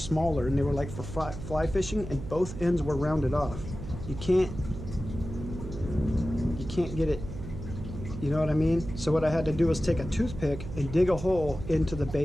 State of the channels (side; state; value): right; noise; hum, 9 dB below the sound